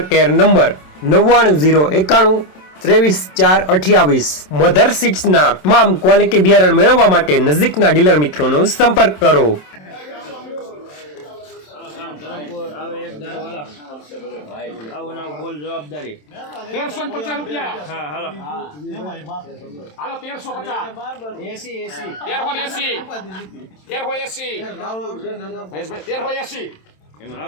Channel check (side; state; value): right; late; 27 ms